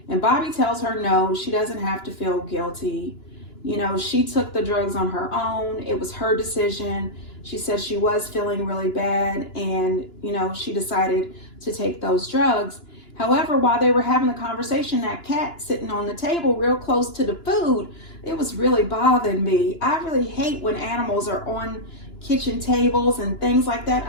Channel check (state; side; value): late; right; 2.9 ms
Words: And Bobby tells her no, she doesn't have to feel guilty. She took the drugs on her own. It was her decision. She said she was feeling really bad and, she decided to take those drugs. However, while they were having the conversation, that cat sitting on the table real close to the food, it was really bothering me. I really hate when animals are on kitchen tables and things like that.